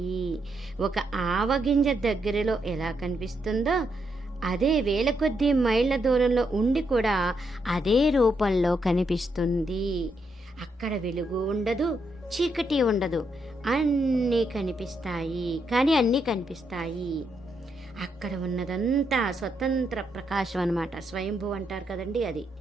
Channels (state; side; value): normal; both; correlation 0.79